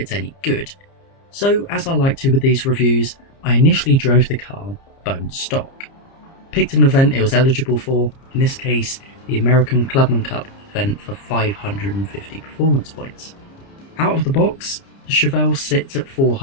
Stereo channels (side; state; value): right; late; 30 ms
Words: any good. So as I like to with these reviews, I initially drove the car bone stock. Picked an event it was eligible for, in this case the American Clubman Cup event for 550 performance points. Out of the box, the Chevelle sits at